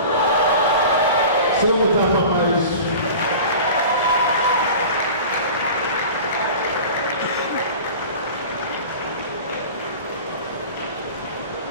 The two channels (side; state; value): both; inverted; correlation -0.37